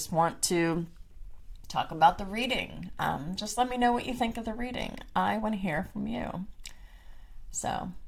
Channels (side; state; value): both; identical; correlation 1.00